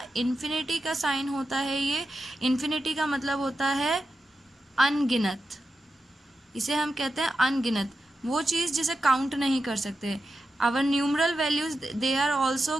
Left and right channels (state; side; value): normal; both; correlation 0.90